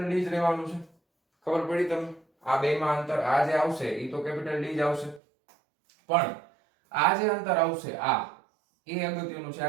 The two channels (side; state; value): left; drops out; at 5.2 s